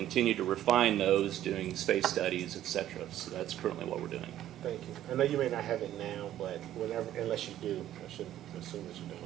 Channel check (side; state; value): left; quieter; 12.4 dB